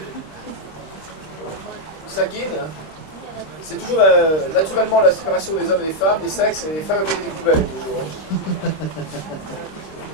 Sakine, c'est toujours naturellement la séparation des hommes et des femmes, des sexes, et les femmes avec des poubelles toujours.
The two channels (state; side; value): late; right; 26 ms